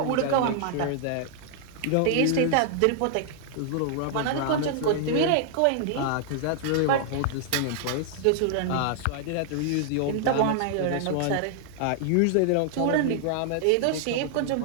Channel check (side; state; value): both; different; correlation -0.01